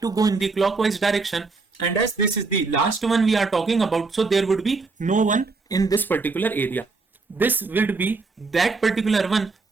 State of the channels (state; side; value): quieter; left; 4.0 dB